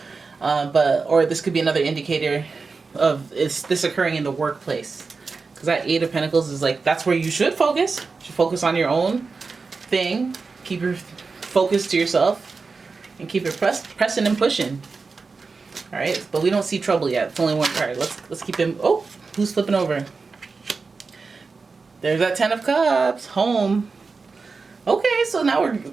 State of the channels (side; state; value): left; quieter; 4.5 dB